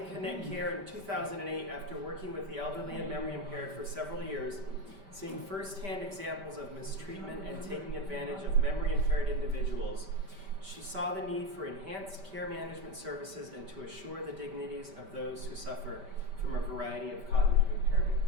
Connect Care in 2008 after working with the elderly and memory impaired for several years, seeing firsthand examples of mistreatment and taking advantage of memory impaired individuals. She saw the need for enhanced care management services and to assure the dignities of those who suffer from a variety of cognitive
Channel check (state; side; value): late; left; 5.1 ms